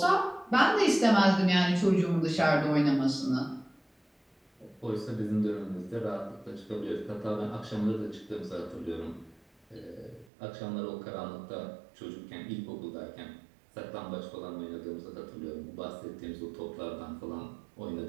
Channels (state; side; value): drops out; left; at 10.2 s